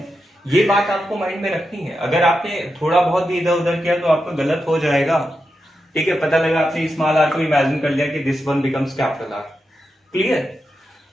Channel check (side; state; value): both; normal; correlation 0.87